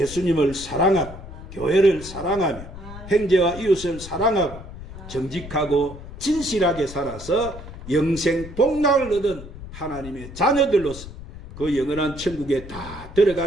사랑하고 교회를 사랑하며 형제와 이웃을 사랑하고 정직하고 진실하게 살아서 영생 복락을 얻은 하나님의 자녀들로서 그 영원한 천국에 다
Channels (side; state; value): left; noise; rumble, 13 dB below the sound